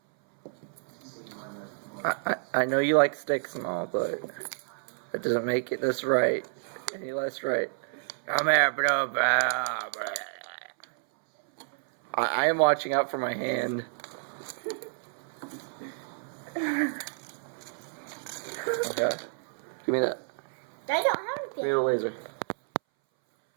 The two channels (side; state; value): left; silent; 58 dB below the other